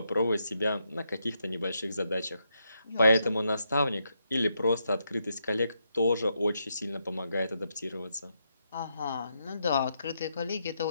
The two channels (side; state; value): both; inverted; correlation -0.81